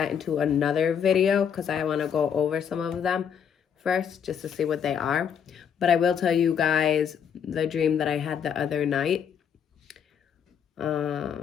into another video because I want to go over some of them first just to see what they are. But I will tell you guys the dream that I had the other night.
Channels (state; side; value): quieter; right; 7.9 dB